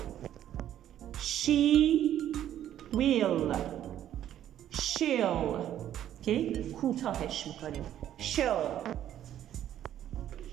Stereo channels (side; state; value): left; quieter; 11.3 dB